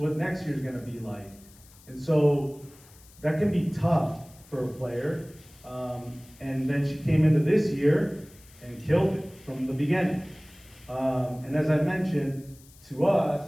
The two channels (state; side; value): noise; left; hiss, 25 dB below the sound